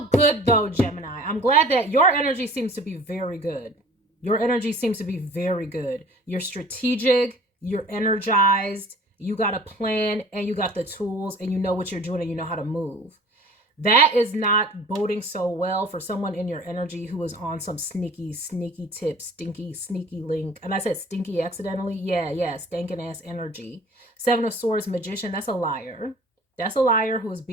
good though, Gemini. I'm glad that your energy seems to be very good. Your energy seems to be very good. You're strategic, you're energized, you got a plan, and you got the tools, and you know what you're doing, and you know how to move. That is not boding so well for someone in your energy who is on some sneaky tip, sneaky link. And I said stinky accidentally. Yeah, stinking ass energy. Seven of Swords, Magician, that's a liar. That's a liar who is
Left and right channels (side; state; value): both; normal; correlation 0.47